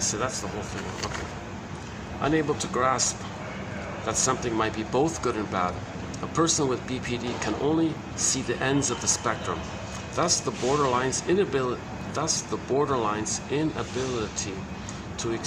that's the whole thing. Okay. Unable to grasp that something might be both good and bad, a person with BPD can only see the ends of the spectrum. Thus the borderline's inability to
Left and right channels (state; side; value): identical; both; correlation 1.00